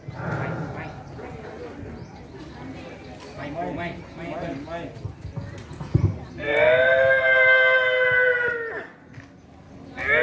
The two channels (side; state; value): both; identical; correlation 1.00